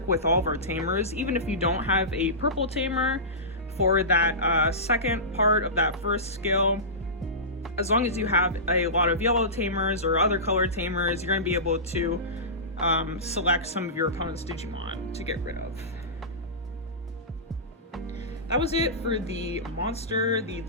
with all of our tamers, even if you don't have a purple tamer for that second part of that first skill. As long as you have a lot of yellow tamers or other color tamers, you're going to be able to select some of your opponent's Digimon to get rid of. That was it for the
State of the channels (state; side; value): normal; both; correlation -0.20